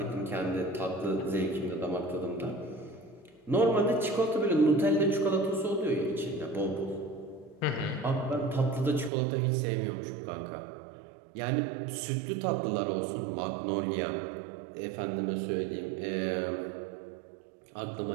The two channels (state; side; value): drops out; left; at 9.1 s